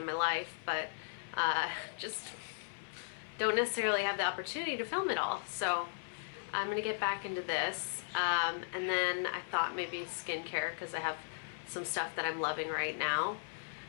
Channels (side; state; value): right; silent; 53 dB below the other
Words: my life, but just don't necessarily have the opportunity to film it all. So I'm gonna get back into this, and then I thought maybe skincare, because I have some stuff that I'm loving right now.